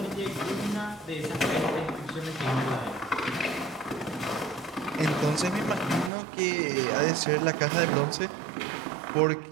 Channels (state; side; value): drops out; left; at 6.1 s